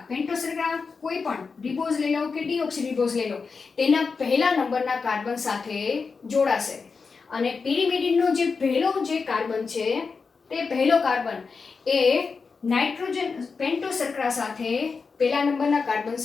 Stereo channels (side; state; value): right; quieter; 4.9 dB